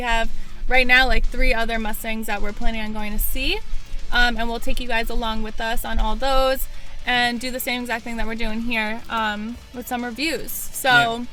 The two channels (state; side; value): identical; both; correlation 1.00